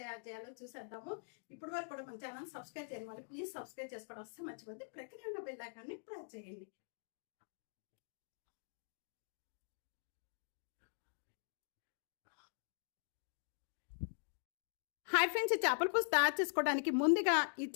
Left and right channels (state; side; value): silent; right; digital silence